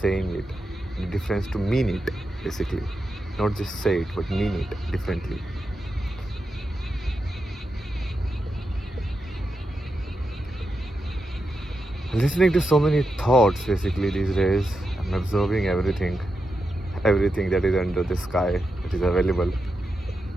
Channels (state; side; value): normal; both; correlation 0.88